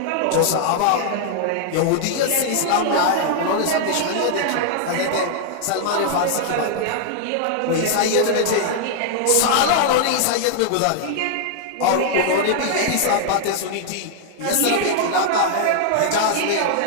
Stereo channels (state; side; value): different; both; correlation 0.00